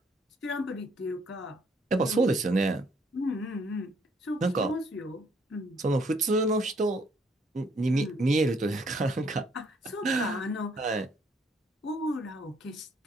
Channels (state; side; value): normal; both; correlation 0.67